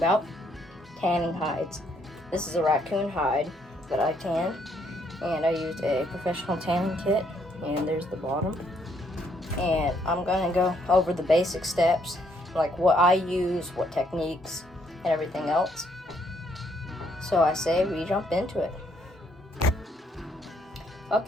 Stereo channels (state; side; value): normal; both; correlation 0.71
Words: tanning hides. This is a raccoon hide that I tanned, and I used a professional tanning kit, and there's the bottom. And I'm going to go over the basic steps, like what I use, what techniques, and everything else. So I say we jump into it.